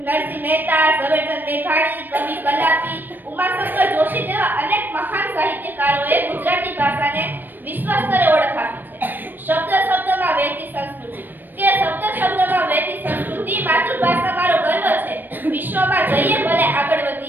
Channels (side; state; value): left; late; 0.092 ms